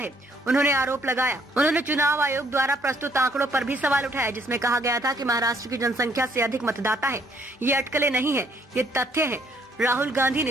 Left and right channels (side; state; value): both; normal; correlation 0.65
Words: उन्होंने आरोप लगाया। उन्होंने चुनाव आयोग द्वारा प्रस्तुत आंकड़ों पर भी सवाल उठाया, जिसमें कहा गया था कि महाराष्ट्र की जनसंख्या से अधिक मतदाता है। ये अटकलें नहीं है, ये तथ्य है। राहुल गांधी